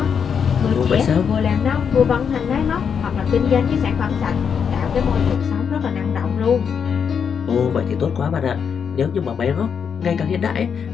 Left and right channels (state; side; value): quieter; right; 7.0 dB